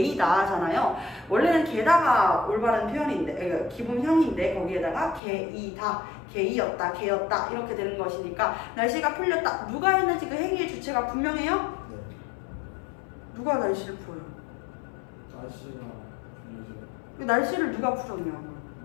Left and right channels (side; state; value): right; drops out; at 5.2 s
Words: 하잖아요. 원래는 개다가 올바른 표현인데, 그러니까 기본형인데 거기에다가 개이다, 개이었다, 개였다 이렇게 되는 것이니까 날씨가 풀렸다. 누가 했는지 그 행위의 주체가 분명해요? 네. 누가 날씨를 풀어요? 날씨가 풀리죠. 그 날씨를 누가 풀었냐고.